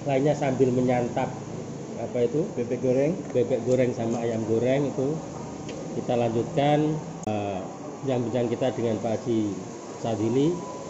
lainnya sambil menyantap apa itu bebek goreng sama ayam goreng itu. Kita lanjutkan bincang kita dengan Pak Haji Sadili.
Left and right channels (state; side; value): identical; both; correlation 1.00